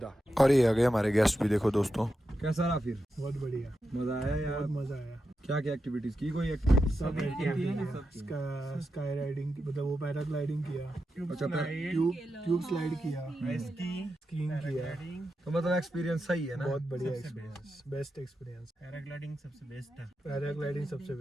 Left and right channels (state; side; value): normal; both; correlation 0.88